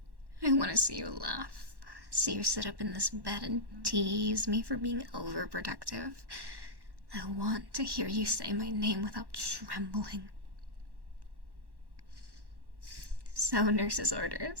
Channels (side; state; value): left; late; 1.1 ms